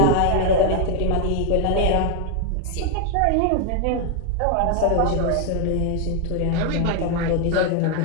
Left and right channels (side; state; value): both; different; correlation 0.01